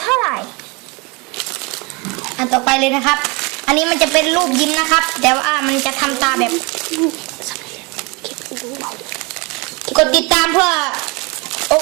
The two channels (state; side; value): quieter; left; 28.1 dB